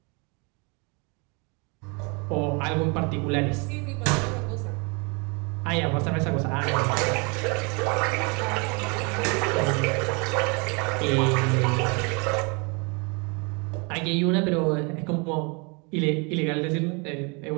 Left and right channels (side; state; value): left; quieter; 31.7 dB